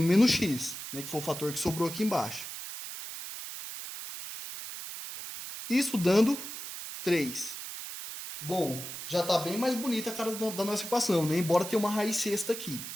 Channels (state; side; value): noise; right; hiss, 9 dB below the sound